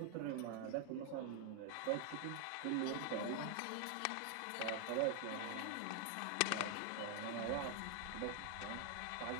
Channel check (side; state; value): both; different; correlation 0.00